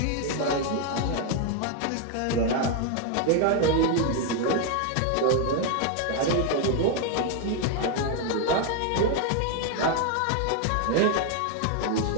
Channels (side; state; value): both; different; correlation 0.00